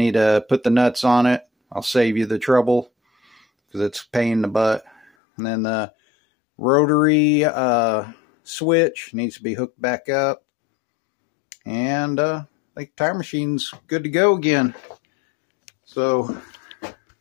to put the nuts on it. I'll save you the trouble because it's a pain in the butt. And then the rotary switch needs to be hooked back up. And I think the tire machine's good to go again. So,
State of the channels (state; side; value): drops out; right; at 5.1 s